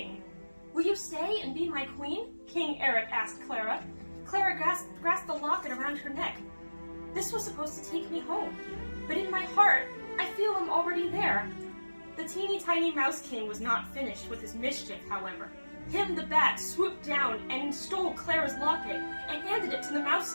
"Will you stay and be my queen?" King Eric asked Clara. Clara grasped the locket around her neck. "This was supposed to take me home, but in my heart, I feel I'm already there." The teeny tiny Mouse King was not finished with his mischief, however. Him the Bat swooped down and stole Clara's locket and handed it to the Mouse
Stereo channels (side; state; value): both; inverted; correlation -1.00